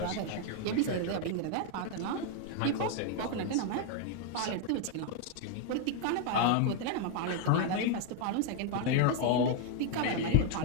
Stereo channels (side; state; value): both; different; correlation 0.00